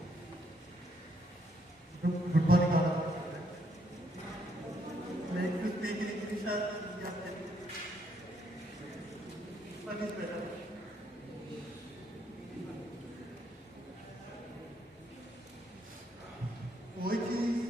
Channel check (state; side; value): normal; both; correlation 0.73